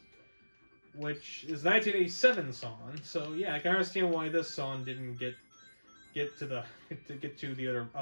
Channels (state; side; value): inverted; both; correlation -1.00